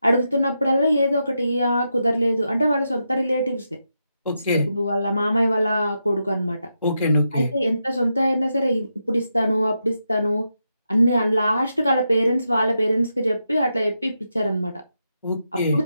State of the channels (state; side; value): inverted; both; correlation -0.85